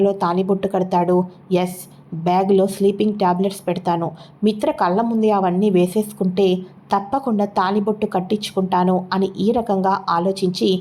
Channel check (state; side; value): identical; both; correlation 1.00